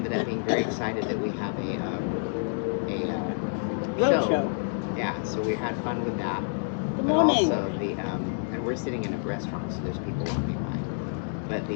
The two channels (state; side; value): silent; right; digital silence